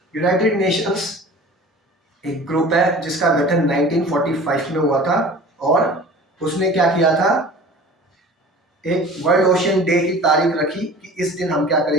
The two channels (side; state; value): both; normal; correlation 0.42